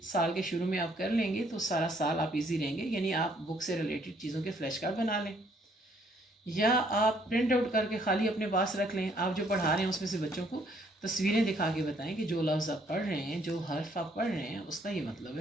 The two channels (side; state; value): both; normal; correlation 0.66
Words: سال کے شروع میں آپ کر لیں گے تو سارا سال آپ ایزی رہیں گے. یعنی آپ بک سے ریلیٹڈ چیزوں کے فلیش کارڈ بنا لیں، یا آپ پرنٹ آؤٹ کر کے خالی اپنے پاس رکھ لیں. آپ جو پڑھا رہے ہیں اس میں سے بچوں کو تصویریں دکھا کے بتائیں کہ جو لفظ آپ پڑھ رہے ہیں، جو حرف آپ پڑھ رہے ہیں، اس کا یہ مطلب